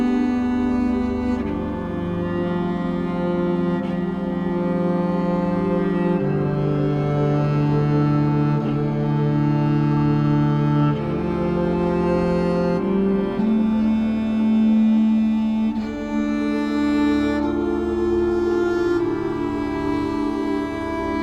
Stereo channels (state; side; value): identical; both; correlation 1.00